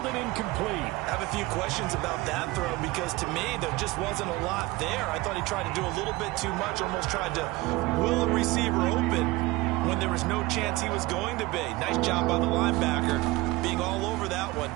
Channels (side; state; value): left; quieter; 20.7 dB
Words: and incomplete. I have a few questions about that throw because to me there just wasn't a lot there. I thought he tried to do a little bit too much, almost tried to will a receiver open when there was no chance he was going to be. Nice job by the linebacker being all over that one